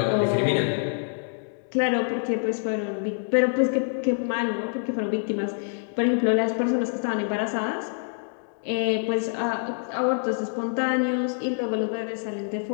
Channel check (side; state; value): right; silent; digital silence